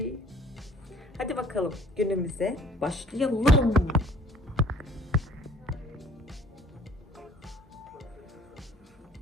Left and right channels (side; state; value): both; normal; correlation 0.55